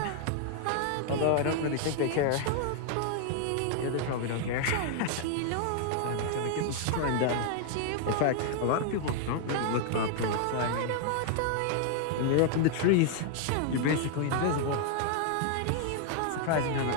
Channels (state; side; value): different; both; correlation 0.00